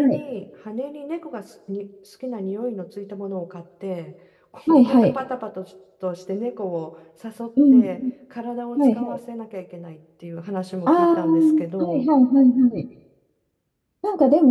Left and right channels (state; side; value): identical; both; correlation 1.00